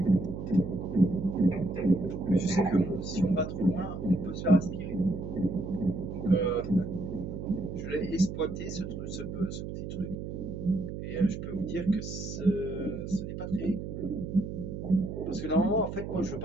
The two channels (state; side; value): noise; right; hum, 7 dB below the sound